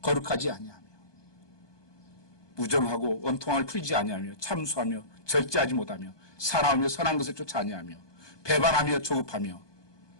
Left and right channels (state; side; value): late; right; 1.2 ms